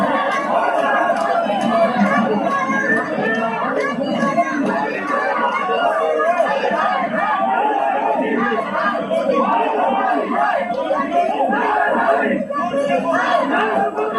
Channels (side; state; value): both; identical; correlation 1.00